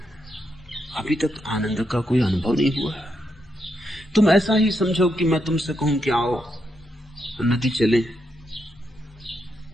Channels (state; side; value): normal; both; correlation 0.81